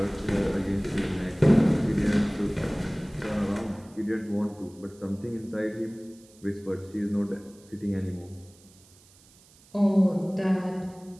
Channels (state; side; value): noise; right; hiss, 27 dB below the sound